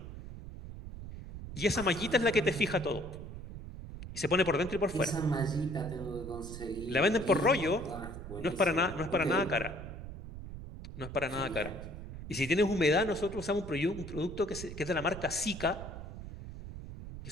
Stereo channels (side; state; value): right; noise; rumble, 10 dB below the sound